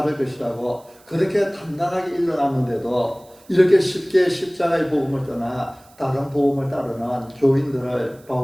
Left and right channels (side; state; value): right; noise; hiss, 28 dB below the sound